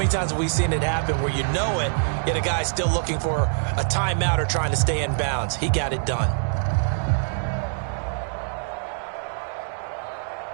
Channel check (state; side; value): silent; left; digital silence